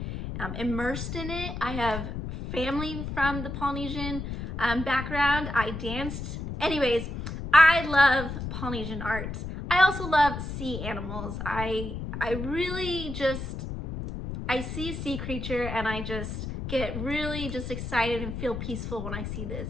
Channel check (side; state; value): left; noise; rumble, 6 dB below the sound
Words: immersed in it. I have family from the Polynesian background. I danced. Anyways, I love Polynesian art. I also love sea animals. I really just, I see a sea creature and I just get really just excited and feel peaceful when I see the